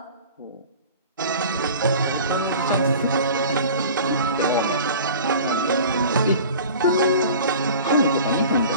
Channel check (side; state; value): both; inverted; correlation -0.42